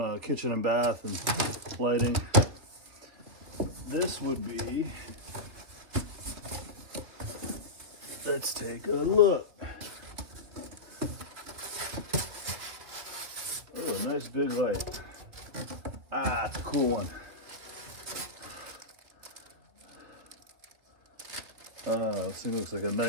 kitchen and bath and lighting. This would be, let's take a look. Oh, a nice big light. Ah, it's a cool one. This thing looks like a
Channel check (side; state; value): left; late; 3.2 ms